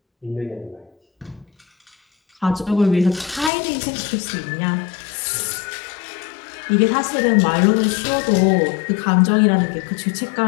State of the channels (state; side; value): drops out; right; at 3.5 s